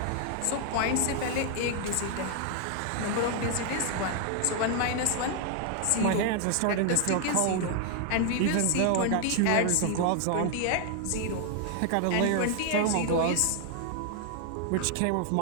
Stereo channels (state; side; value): different; both; correlation 0.00